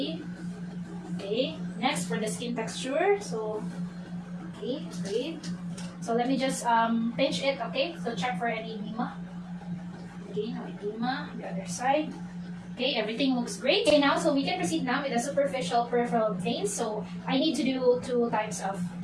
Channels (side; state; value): both; identical; correlation 1.00